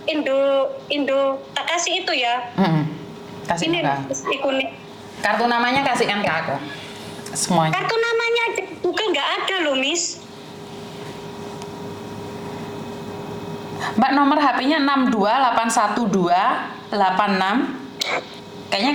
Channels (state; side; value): identical; both; correlation 1.00